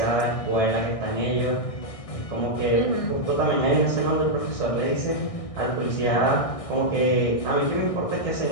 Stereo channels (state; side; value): late; right; 1.6 ms